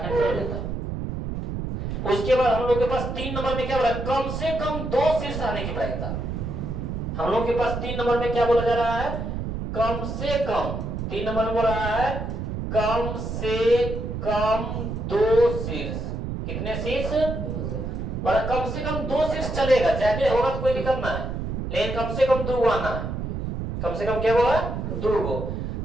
हो जाता। उसके बाद हम लोग के पास 3 नंबर में क्या बोला, कम से कम 2 शीर्ष आने की प्रायिकता। हम लोग के पास 3 नंबर में क्या बोला जा रहा है, कम से कम 3 नंबर में बोल रहा है कम से कम 2 शीर्ष। कितने शीर्ष, बोला कम से कम 2 शीर्ष चलेगा, ज्यादा होगा तो कोई दिक्कत ना है, लेकिन कम से कम 2 आना है। कम से कम क्या हुआ 2 गो,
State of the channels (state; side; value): noise; right; rumble, 4 dB below the sound